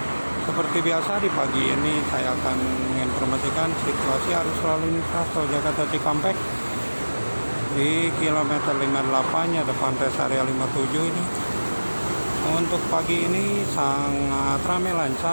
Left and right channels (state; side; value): inverted; both; correlation -1.00